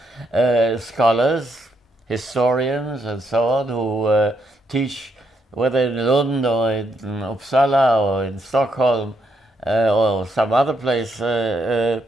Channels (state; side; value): normal; both; correlation 0.77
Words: scholars, historians, and so on, who teach, whether in Lund or in Uppsala or in Stockholm or some other place,